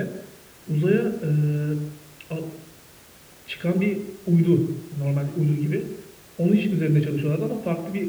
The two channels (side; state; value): both; identical; correlation 1.00